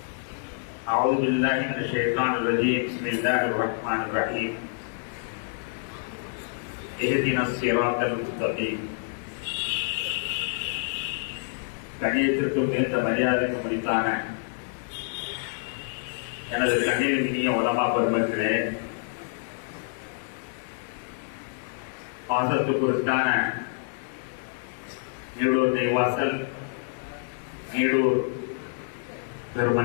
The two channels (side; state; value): right; silent; digital silence